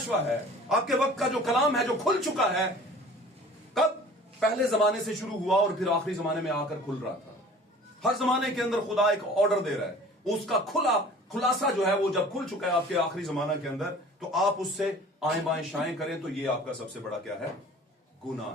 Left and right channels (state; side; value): normal; both; correlation 0.46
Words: है, आपके वक्त का जो कलाम है, जो खुल चुका है, कब? पहले जमाने से शुरू हुआ और फिर आखिरी जमाने में आकर खुल रहा था। हर जमाने के अंदर खुदा एक ऑर्डर दे रहा है, उसका खुलासा जो है वो जब खुल चुका है आपके आखिरी जमाना के अंदर, तो आप उससे आएं बाएं शाएं करें तो ये आपका सबसे बड़ा क्या है? गुनाह